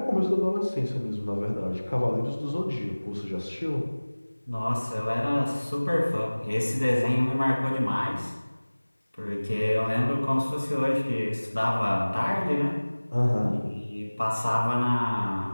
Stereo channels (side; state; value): both; inverted; correlation -1.00